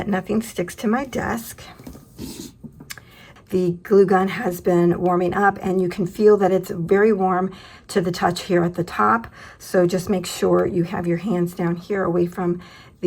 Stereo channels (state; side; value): identical; both; correlation 1.00